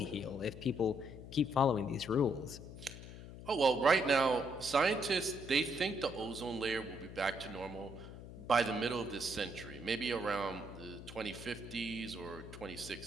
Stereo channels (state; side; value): noise; left; hum, 13 dB below the sound